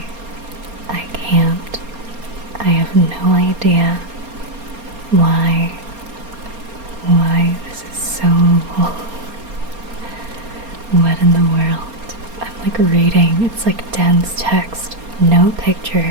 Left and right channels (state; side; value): late; left; 4.3 ms